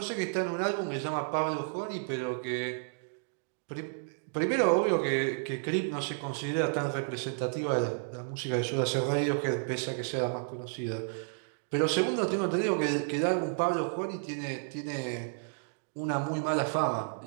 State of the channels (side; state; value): left; silent; digital silence